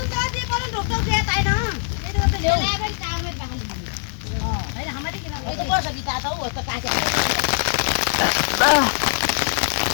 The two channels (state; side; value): silent; right; 60 dB below the other